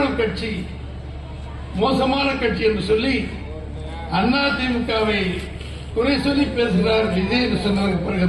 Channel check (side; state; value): both; identical; correlation 1.00